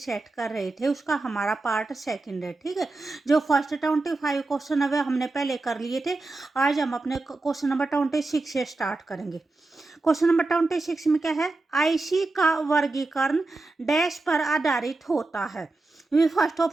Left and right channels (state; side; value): quieter; left; 3.2 dB